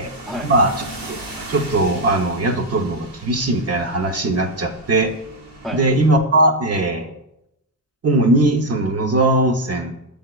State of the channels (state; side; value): normal; both; correlation 0.02